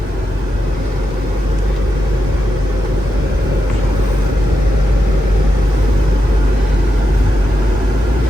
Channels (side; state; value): both; normal; correlation 0.87